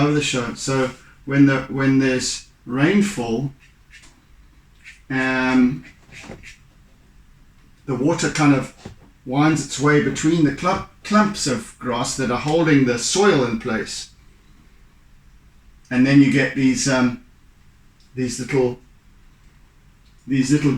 the show. So when there's rainfall, the water kind of winds its way between the clumps of grass that are holding the soil in place, and then you get these little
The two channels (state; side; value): identical; both; correlation 1.00